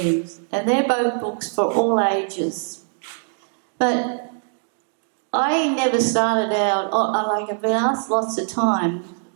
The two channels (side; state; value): left; silent; 64 dB below the other